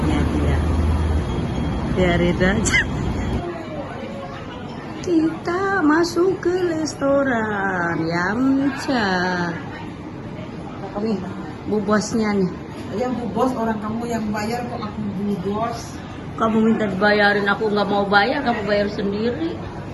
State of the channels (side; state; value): both; identical; correlation 1.00